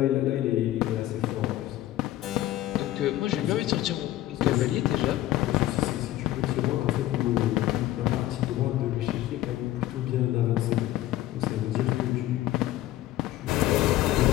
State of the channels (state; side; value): quieter; right; 14.7 dB